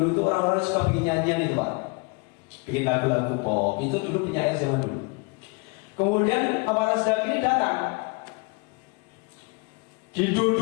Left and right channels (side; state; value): right; quieter; 30.4 dB